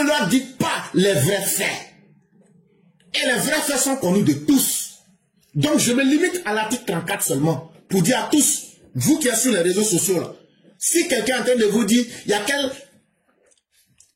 leur dites pas les vrais faits. Et les vrais faits sont connus de tous. Donc je me limite à l'article 34 seulement pour dire à tous, vous qui êtes sur les réseaux sociaux là, si quelqu'un est en train de vous dire, il y a quel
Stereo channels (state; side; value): identical; both; correlation 1.00